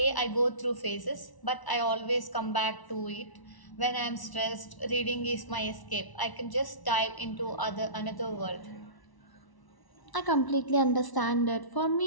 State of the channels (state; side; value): late; right; 1.0 ms